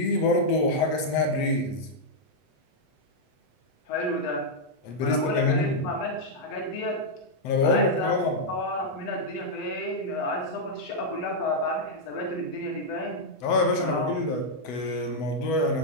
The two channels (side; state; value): right; late; 8.0 ms